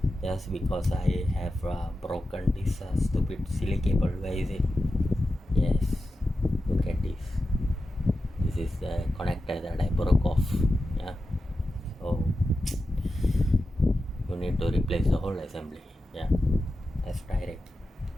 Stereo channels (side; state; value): both; normal; correlation 0.91